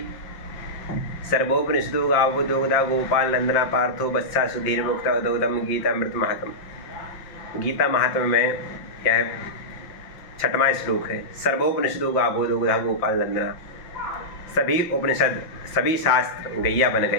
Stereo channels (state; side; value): late; right; 5.7 ms